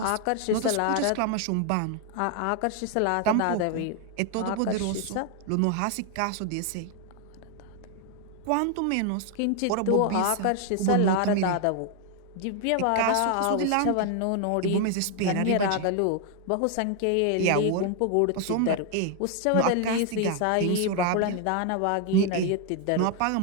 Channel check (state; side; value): different; both; correlation 0.00